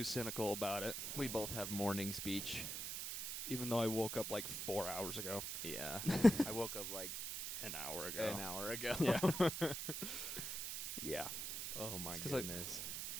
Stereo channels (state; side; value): noise; right; hiss, 3 dB below the sound